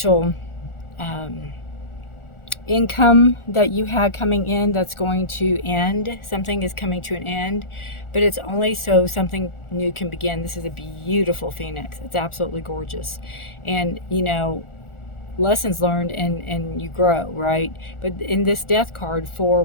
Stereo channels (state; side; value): late; right; 1.4 ms